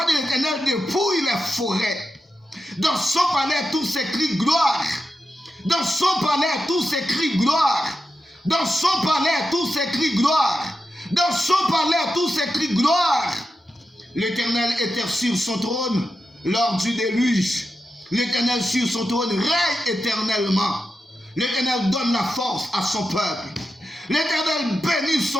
de l'Éternel dépouille les forêts. Dans son palais, tout s'écrie gloire. Dans son palais, tout s'écrie gloire. Dans son palais, tout s'écrie gloire. Dans son palais, tout s'écrie gloire. L'Éternel était sur son trône lors du déluge. L'Éternel sur son trône règne éternellement. L'Éternel donne la force à son peuple. L'Éternel bénit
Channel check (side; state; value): both; normal; correlation 0.88